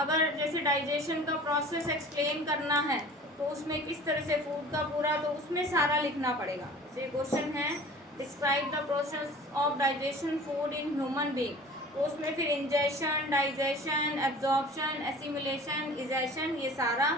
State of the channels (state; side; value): normal; both; correlation 0.43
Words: जैसे डाइजेशन का प्रोसेस एक्सप्लेन करना है तो उसमें किस तरह से फूड का पूरा, तो उसमें सारा लिखना पड़ेगा। जैसे क्वेश्चन है describe the process of digestion food in human being, तो उसमें फिर ingestion, digestion, absorption, assimilation, egestion, ये